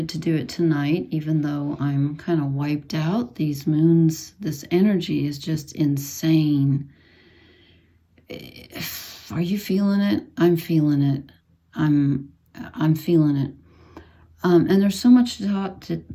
to do it tonight, even though I'm kind of wiped out. These moons, this energy is just insane. Are you feeling it? I'm feeling it. I'm feeling it. And there's so much to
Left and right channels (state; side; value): identical; both; correlation 1.00